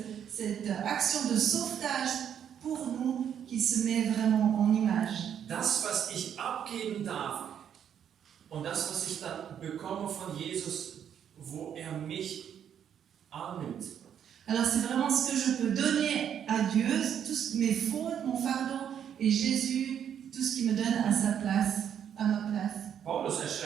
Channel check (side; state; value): left; quieter; 8.9 dB